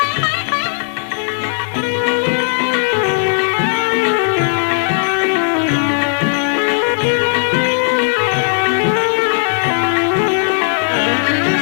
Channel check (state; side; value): silent; right; digital silence